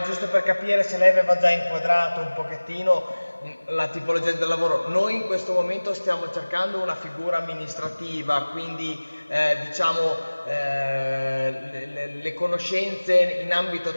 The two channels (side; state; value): both; inverted; correlation -1.00